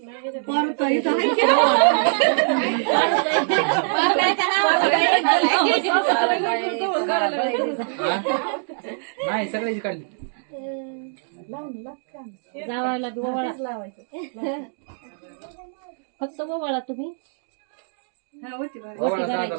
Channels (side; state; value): left; silent; digital silence